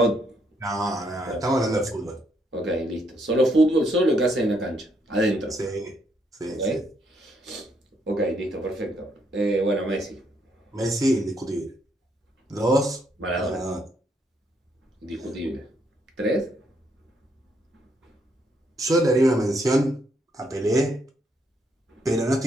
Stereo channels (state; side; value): normal; both; correlation 0.73